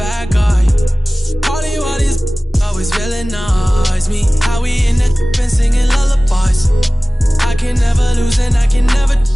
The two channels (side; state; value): both; normal; correlation 0.98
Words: guy. Party while these always villainize me. How we in the been singing lullabies. I can never lose and I can never.